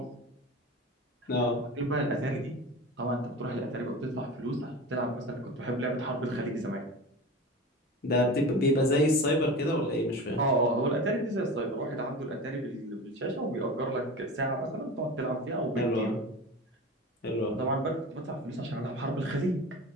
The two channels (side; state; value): both; normal; correlation 0.31